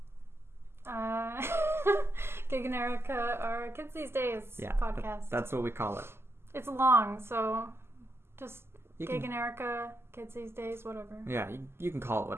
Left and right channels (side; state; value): left; late; 0.12 ms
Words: Gig and Erika, our Kids These Days podcast. That's what we call it. It's long, so just Gig and Erika, Kids These Days, whatever. Yeah, you can call it